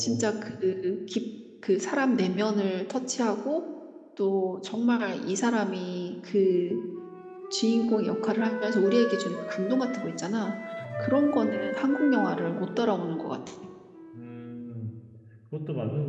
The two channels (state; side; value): identical; both; correlation 1.00